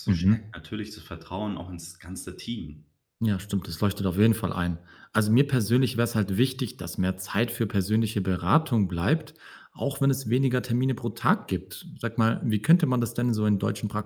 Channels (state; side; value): identical; both; correlation 1.00